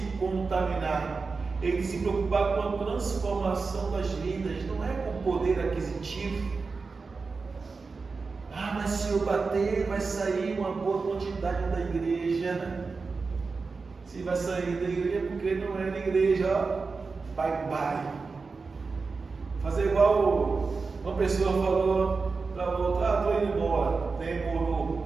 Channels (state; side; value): quieter; left; 4.4 dB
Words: contaminar, ele tem que se preocupar com a transformação das vidas, não é com poder aquisitivo. Ah, mas se eu bater, vai sair uma boa quantidade da igreja. Se vai sair da igreja, porque não é da igreja, ó. Bye bye. Fazer igual uma pessoa falou para outra: ah, estou indo embora,